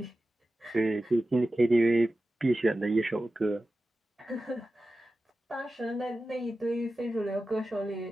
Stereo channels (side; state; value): both; normal; correlation 0.94